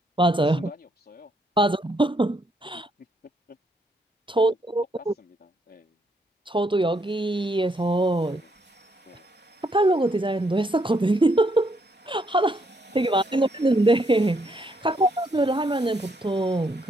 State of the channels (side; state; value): both; normal; correlation 0.73